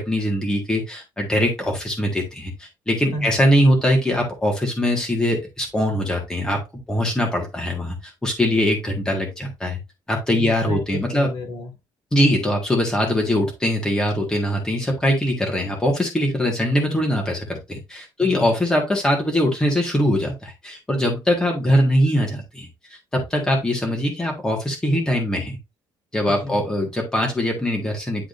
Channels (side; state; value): both; normal; correlation 0.77